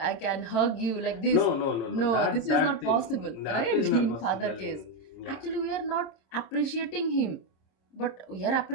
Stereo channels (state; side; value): late; right; 26 ms